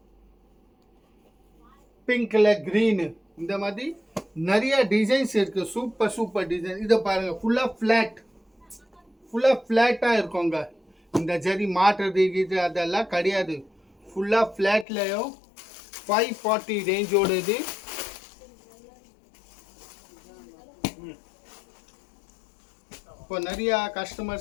பிங்க்ல கிரீன், இந்த மாதிரி நிறைய டிசைன்ஸ் இருக்கு. Super super design. இதை பாருங்க, ஃபுல்லா ஃபிளாட்டா இருக்குங்க. இந்த ஜரி மாட்டுறது இது அதெல்லாம் கிடையாது. ஃபுல்லா ஃபிளாட்லயும் 540 ரேஞ்சோட இது. இப்போ நிறைய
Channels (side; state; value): right; drops out; at 14.9 s